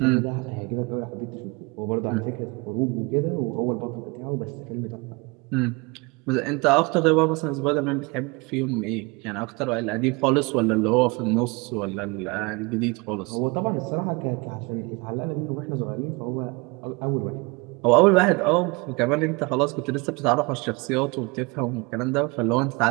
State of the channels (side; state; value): left; quieter; 27.6 dB